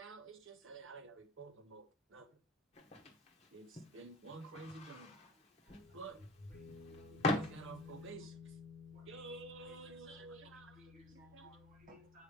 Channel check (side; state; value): both; normal; correlation 0.39